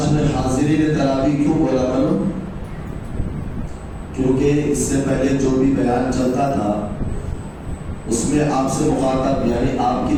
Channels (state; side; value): identical; both; correlation 1.00